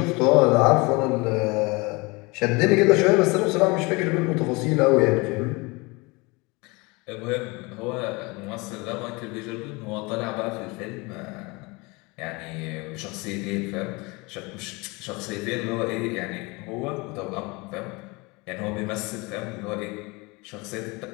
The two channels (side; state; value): right; quieter; 26.0 dB